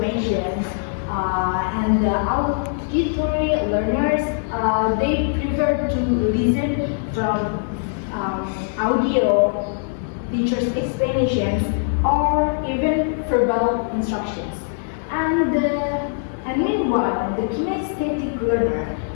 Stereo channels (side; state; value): right; silent; 61 dB below the other